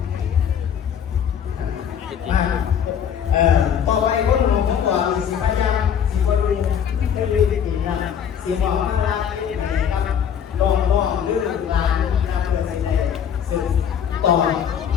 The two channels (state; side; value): quieter; right; 8.4 dB